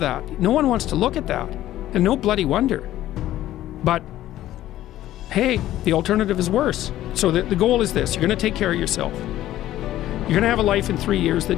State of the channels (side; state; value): right; quieter; 13.8 dB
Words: that. No one wants to look at that, and no bloody wonder. But hey, the alternative is worse. So the goal is this: you're going to take care of yourself. You're going to have a life in 3 years